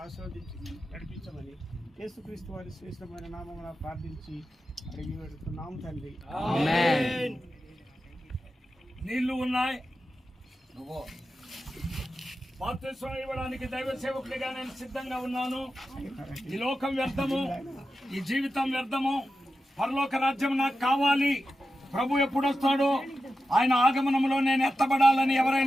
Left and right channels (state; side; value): normal; both; correlation 0.91